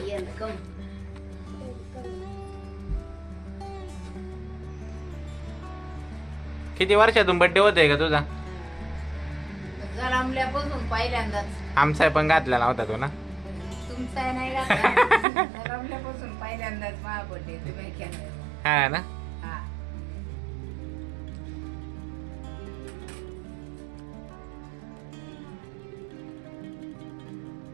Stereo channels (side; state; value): left; drops out; at 15.2 s